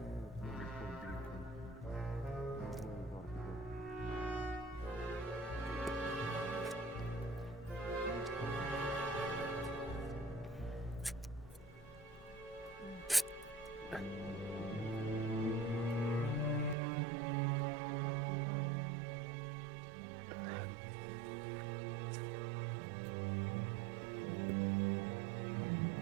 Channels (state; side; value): drops out; left; at 16.8 s